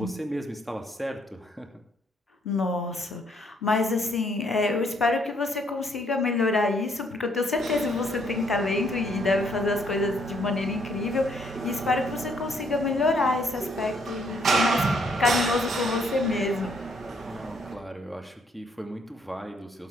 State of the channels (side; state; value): both; normal; correlation 0.68